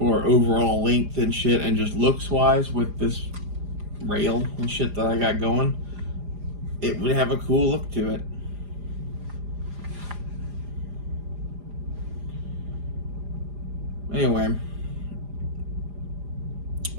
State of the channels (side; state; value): left; late; 4.9 ms